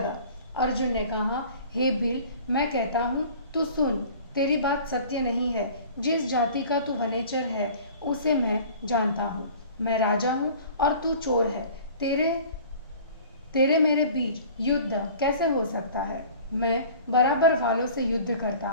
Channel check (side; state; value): both; inverted; correlation -0.45